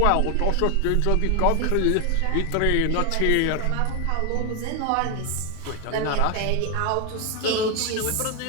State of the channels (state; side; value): different; both; correlation 0.01